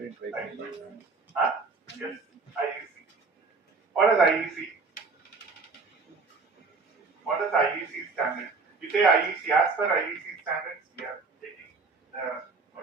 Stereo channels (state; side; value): quieter; left; 4.2 dB